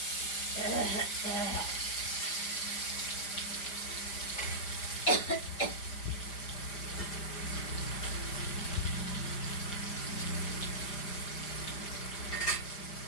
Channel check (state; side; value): late; right; 5.0 ms